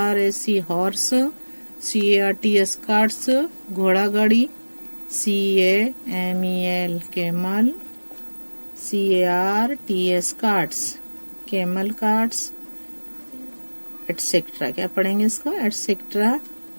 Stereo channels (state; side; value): inverted; both; correlation -1.00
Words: हॉर्स, CARTS कार्ट्स घोड़ा गाड़ी, CAMEL camel, CARTS carts camel carts etcetera. क्या पढ़ेंगे इसको, एटसेट्रा